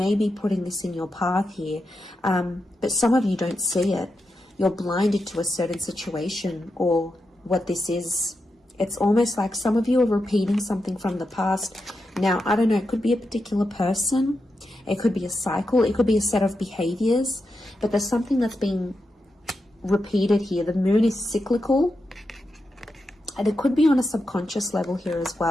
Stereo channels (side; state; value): both; normal; correlation 0.87